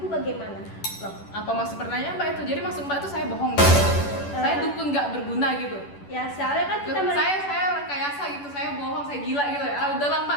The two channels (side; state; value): right; late; 11 ms